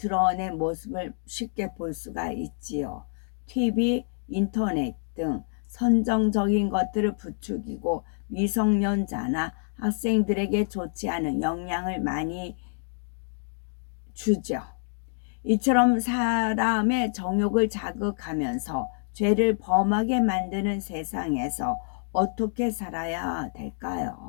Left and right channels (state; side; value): silent; right; digital silence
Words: 모습을 쉽게 볼 수가 있지요. TV, 인터넷 등 선정적인 것들을 부추기고 미성년자나 학생들에게 좋지 않은 영향을 많이 주죠. 이처럼 사람의 정욕을 자극하면서 죄를 범하게 만드는 세상에서 어떻게 살아야